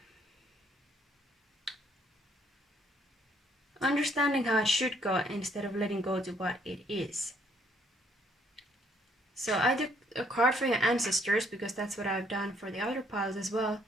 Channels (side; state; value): both; normal; correlation 0.66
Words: understanding how it should go instead of letting go to what it is. So I took a card for your ancestors, because that's what I've done for the other piles as well,